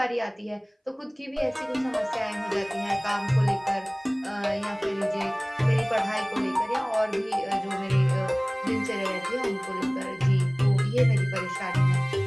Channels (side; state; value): both; identical; correlation 1.00